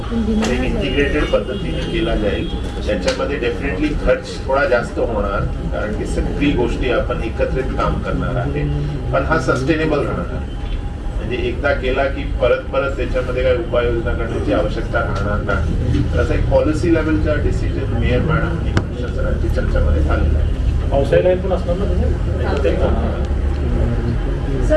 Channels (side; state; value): both; identical; correlation 1.00